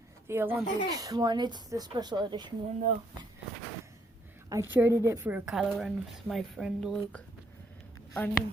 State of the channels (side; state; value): both; normal; correlation 0.70